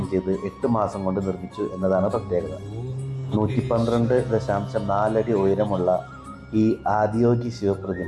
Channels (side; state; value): both; identical; correlation 1.00